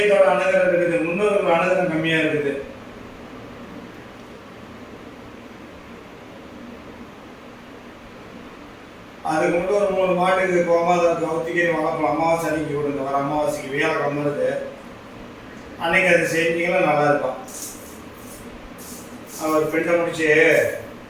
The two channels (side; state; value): both; identical; correlation 1.00